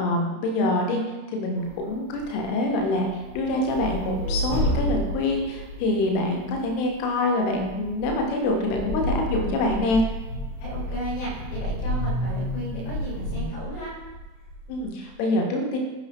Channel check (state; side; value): late; right; 31 ms